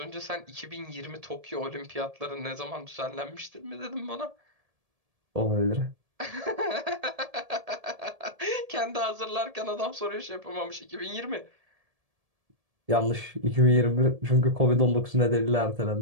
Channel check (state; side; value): late; left; 1.7 ms